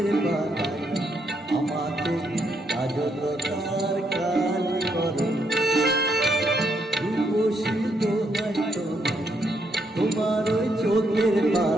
পাতায় আমাকে কাজলতার কালি করো। রূপসী দোহাই তোমার ওই চোখের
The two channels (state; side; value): normal; both; correlation 0.76